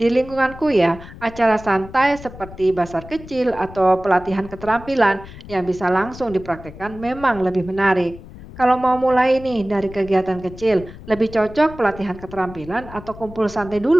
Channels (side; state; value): left; noise; rumble, 16 dB below the sound